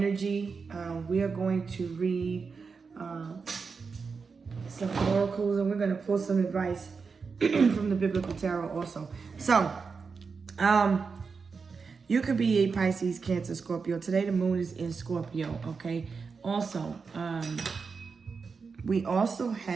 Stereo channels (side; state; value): left; quieter; 5.1 dB